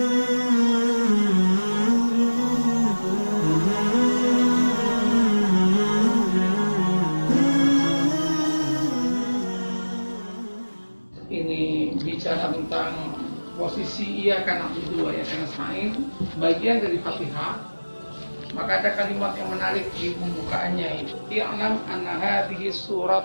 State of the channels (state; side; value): inverted; both; correlation -1.00